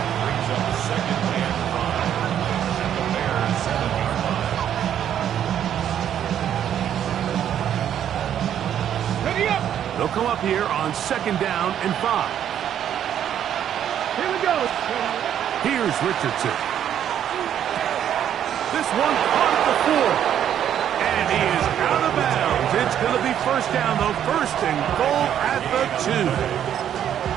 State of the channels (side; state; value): left; quieter; 9.9 dB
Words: They'll come up here on 2nd down and 5. Here we go. Here's Richardson. This one caught at the 4. And he is out of bounds. It's going to be 1st down, though. 1st and goal at the 2.